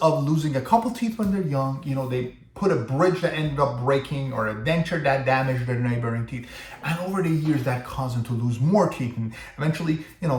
losing a couple teeth when they're young. They put a bridge that ended up breaking or a denture that damaged their neighboring teeth. And over the years, that caused them to lose more teeth. And eventually,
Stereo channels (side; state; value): both; identical; correlation 1.00